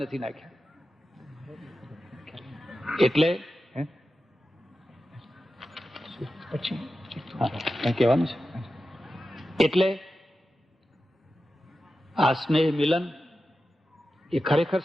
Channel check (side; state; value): both; normal; correlation 0.92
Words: નાખ્યા. એટલે કઈ કહેવાનું છે? એટલે આ સ્નેહ મિલન એ ખરેખર